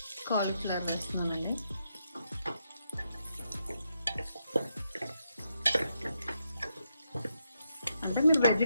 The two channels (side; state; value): both; inverted; correlation -0.81